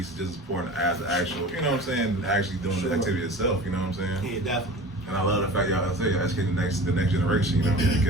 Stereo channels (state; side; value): normal; both; correlation 0.38